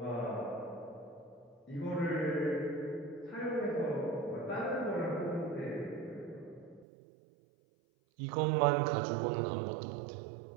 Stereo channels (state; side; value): drops out; left; at 6.9 s